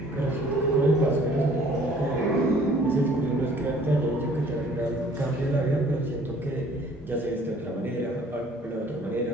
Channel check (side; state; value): both; normal; correlation 0.55